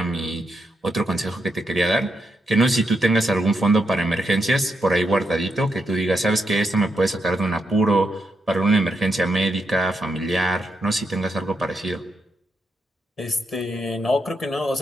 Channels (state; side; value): normal; both; correlation 0.82